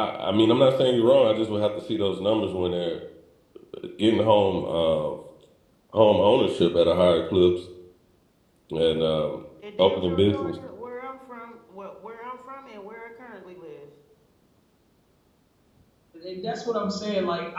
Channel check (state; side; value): identical; both; correlation 1.00